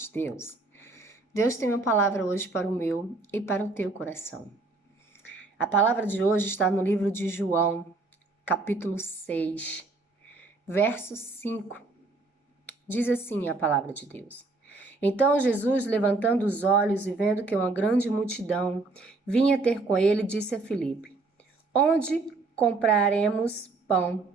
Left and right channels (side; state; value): left; quieter; 3.5 dB